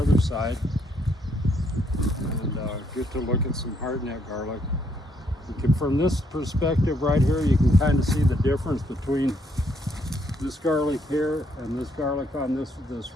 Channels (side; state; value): both; normal; correlation 0.72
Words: side and get to look at some hardneck garlic. From this perspective right here, you can kind of see the difference between this garlic here and this garlic on this